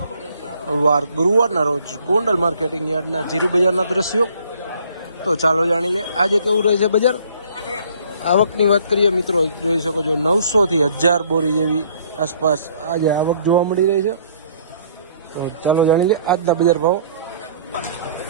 વાર ગુરુવારના રોજ ગોંડલ માર્કેટિંગ યાર્ડના જીરુ બજારના દ્રશ્યો. તો ચાલો જાણી લે આજે કેવું રહે છે બજાર. આવકની વાત કરીએ મિત્રો, જોઈ શકો છો 900 થી 1000 બોરી જેવી આસપાસ આજે આવક જોવા મળી રહી છે. તો ચાલો જાણી લે આજના બજાર ભાવ.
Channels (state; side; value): inverted; both; correlation -0.59